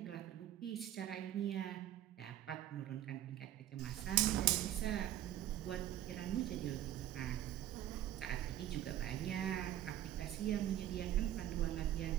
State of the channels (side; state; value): left; quieter; 12.3 dB